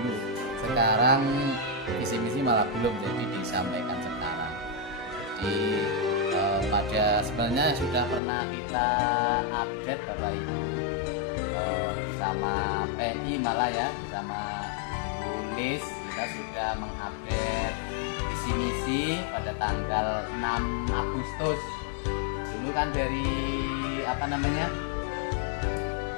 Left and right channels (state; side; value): drops out; right; at 8.2 s